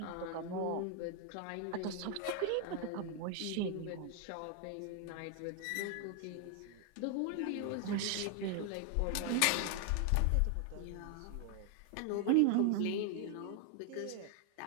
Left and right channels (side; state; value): both; different; correlation 0.00